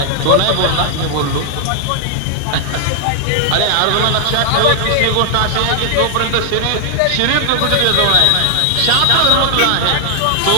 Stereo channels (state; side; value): different; both; correlation 0.00